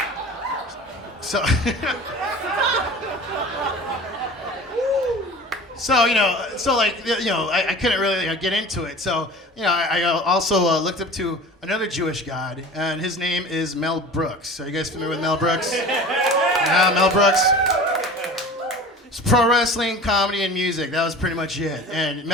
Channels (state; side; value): normal; both; correlation 0.39